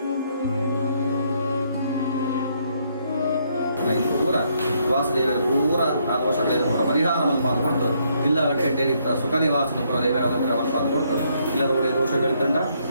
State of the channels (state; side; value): inverted; both; correlation -0.72